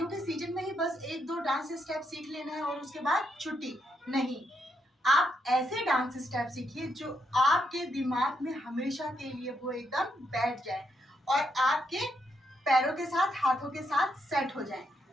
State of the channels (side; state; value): both; normal; correlation 0.79